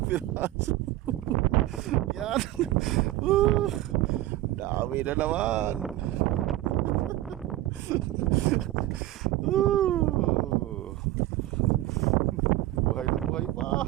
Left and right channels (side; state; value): left; quieter; 15.8 dB